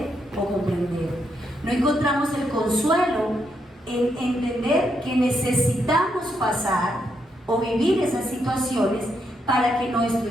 o comprender. No encontramos el consuelo en entender que necesitamos pasar o vivir esas situaciones para que nuestro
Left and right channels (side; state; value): both; normal; correlation 0.79